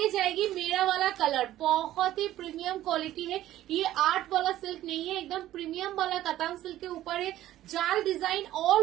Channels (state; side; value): quieter; left; 13.8 dB